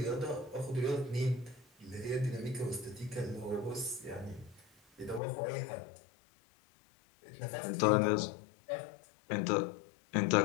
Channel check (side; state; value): right; drops out; at 5.2 s